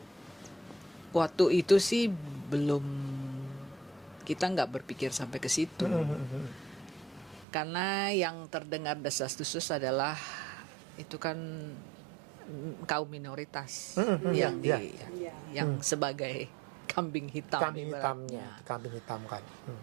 waktu itu sih belum, kita nggak berpikir sampai ke situ. Karena yang terdengar desas-desus adalah itu kan kaum minoritas yang sebagai kambing hitam. Kambing hitamnya, kambing hitam kan.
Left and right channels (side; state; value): left; drops out; at 7.5 s